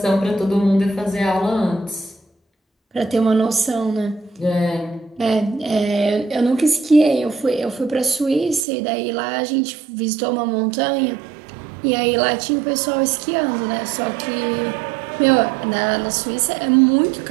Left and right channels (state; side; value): drops out; left; at 8.7 s